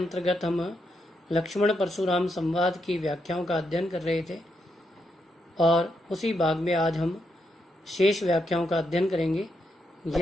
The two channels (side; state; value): both; normal; correlation 0.81